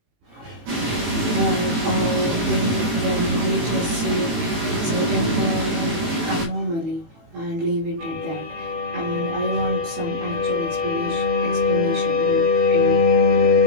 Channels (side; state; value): left; late; 18 ms